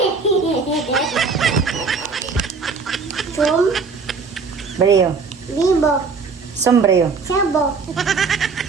Sombrero. Libo. Sombrero. Sabo.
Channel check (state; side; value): quieter; left; 4.8 dB